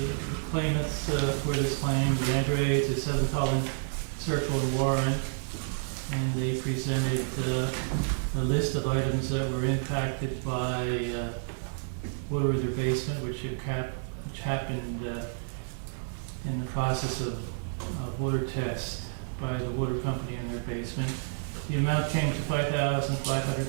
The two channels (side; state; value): left; silent; 58 dB below the other